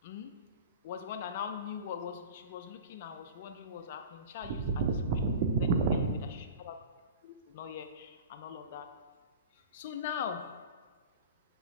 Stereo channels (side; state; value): both; inverted; correlation -0.34